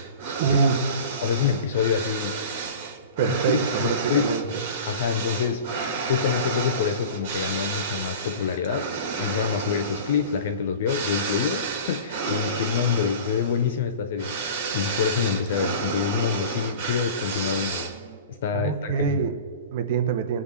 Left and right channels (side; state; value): both; inverted; correlation -0.36